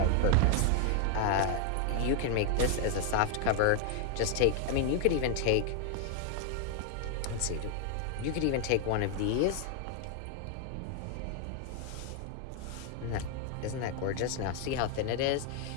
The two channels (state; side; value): different; both; correlation 0.00